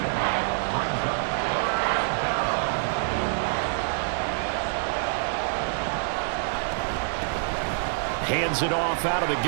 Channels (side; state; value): left; silent; digital silence